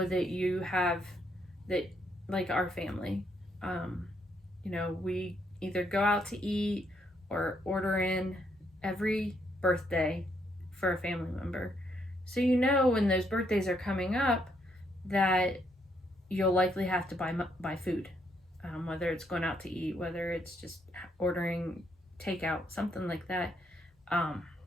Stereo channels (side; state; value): both; normal; correlation 0.74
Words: that you have that, like our family, we either go out to eat or order in every birthday for a family member. So when those birthdays are coming up that you'll likely have to buy food, whether it's going out to eat, whether it's just ordering takeout, something like that.